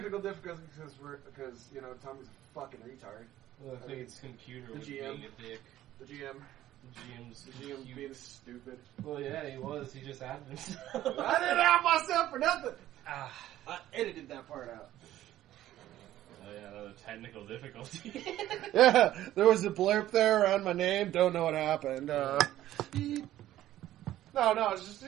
difficulties because Tommy's a fucking retard. Well, I think it's computer the was GM. being a dick. The GM. The GM being stupid. Well, yeah, he was. He just added himself. I didn't have myself for nothing. I edited that part out. Oh yeah, another technical difficulty. Yeah, there was a blurb there around my name. Don't know what happened. No, it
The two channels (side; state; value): left; quieter; 13.6 dB